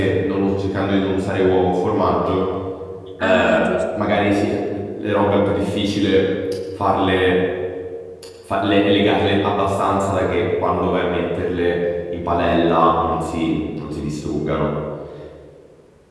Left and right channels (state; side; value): identical; both; correlation 1.00